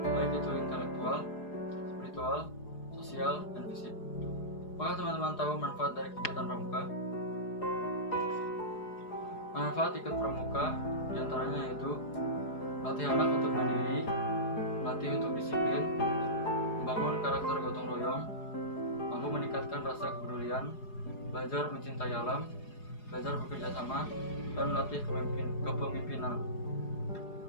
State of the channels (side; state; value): right; late; 4.8 ms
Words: baik itu intelektual, spiritual, sosial, dan fisik. Apakah teman-teman tahu manfaat dari kegiatan pramuka? Manfaat ikut pramuka diantaranya yaitu melatih anak untuk mandiri, melatih untuk disiplin, membangun karakter gotong royong, meningkatkan rasa kepedulian, belajar mencintai alam, belajar bekerja sama, dan melatih kepemimpinan.